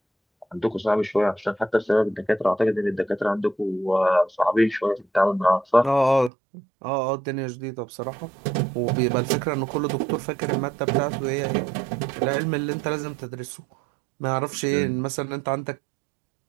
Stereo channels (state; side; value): drops out; left; at 6.3 s